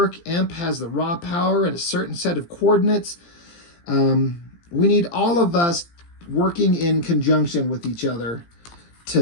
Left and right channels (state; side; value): late; right; 17 ms